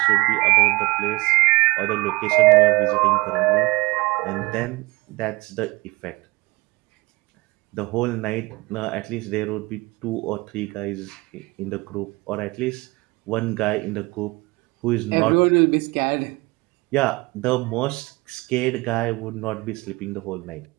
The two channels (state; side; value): quieter; left; 23.6 dB